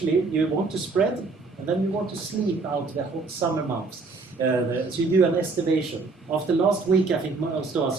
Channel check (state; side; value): quieter; left; 4.0 dB